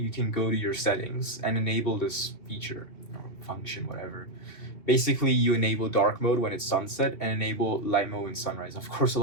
can go to your settings and enable this feature or function, whatever. Basically, you enable dark mode when it's sunset and enable light mode when sunrise. Of course, a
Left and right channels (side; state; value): right; late; 2.9 ms